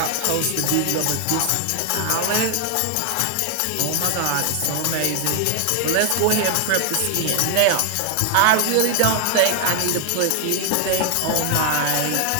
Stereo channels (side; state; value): both; different; correlation 0.00